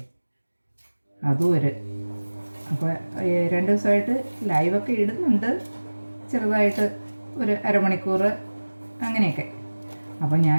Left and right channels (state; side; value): inverted; both; correlation -1.00